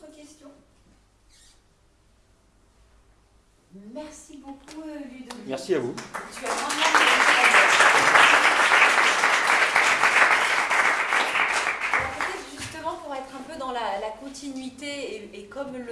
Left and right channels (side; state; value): both; identical; correlation 1.00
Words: questions? Merci beaucoup Ludovic. Merci à vous. Tu as vraiment peut-être justement pour être un peu dans la continuité et comme